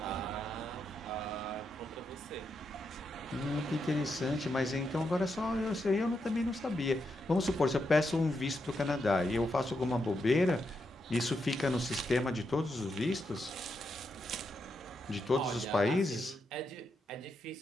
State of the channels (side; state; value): both; normal; correlation 0.83